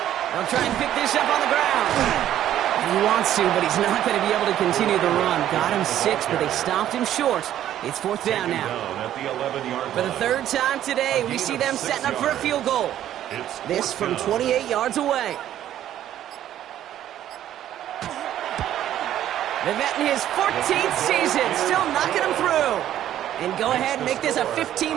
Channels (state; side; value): quieter; left; 11.8 dB